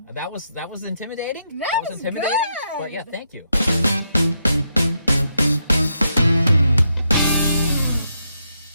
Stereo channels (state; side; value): inverted; both; correlation -0.80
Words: That was intimidating. That was intimidating. good. But yeah, thank you.